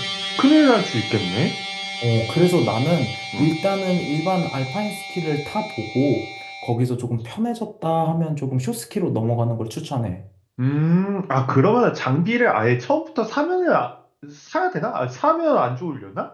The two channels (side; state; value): both; identical; correlation 1.00